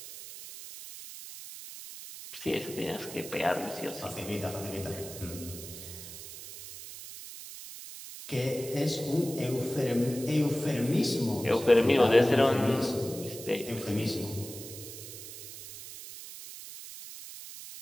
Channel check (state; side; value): noise; right; hiss, 12 dB below the sound